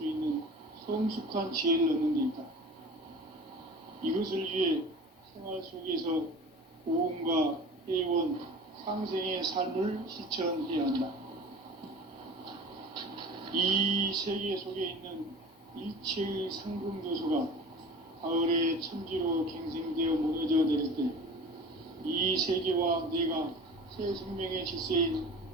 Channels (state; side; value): normal; both; correlation 0.38